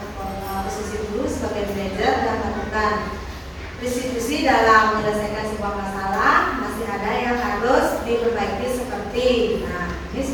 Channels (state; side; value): identical; both; correlation 1.00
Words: posisi dulu sebagai manajer dan melakukan distribusi dalam menyelesaikan sebuah masalah. Masih ada yang harus diperbaiki seperti, nah ini